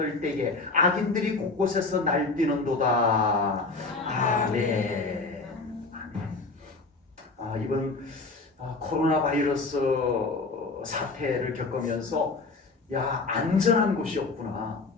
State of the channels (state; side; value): quieter; right; 3.7 dB